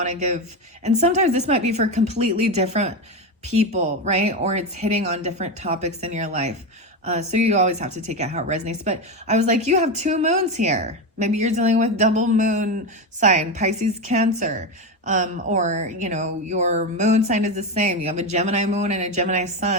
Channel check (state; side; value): normal; both; correlation 0.15